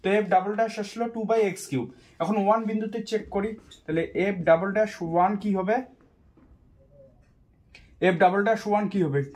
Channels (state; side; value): identical; both; correlation 1.00